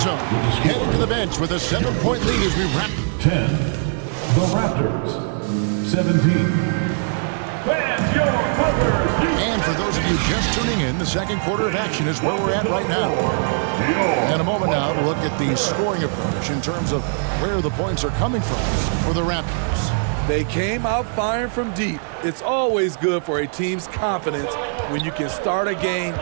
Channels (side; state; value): left; silent; 65 dB below the other